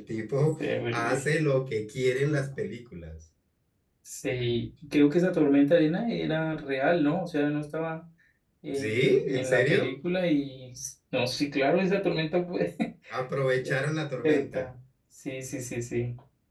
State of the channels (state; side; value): identical; both; correlation 1.00